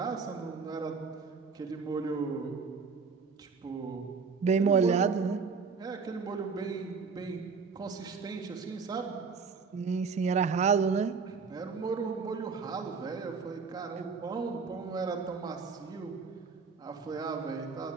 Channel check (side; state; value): left; quieter; 5.2 dB